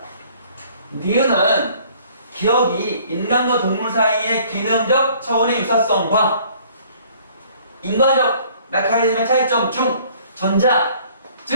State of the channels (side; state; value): both; inverted; correlation -0.56